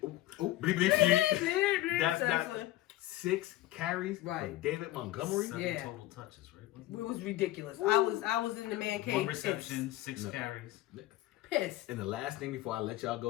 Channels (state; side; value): quieter; right; 15.8 dB